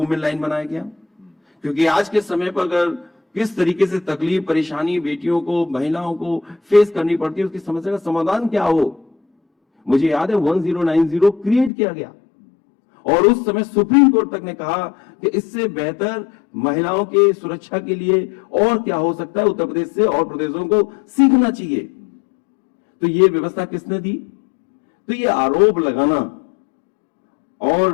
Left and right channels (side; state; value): right; drops out; at 11.7 s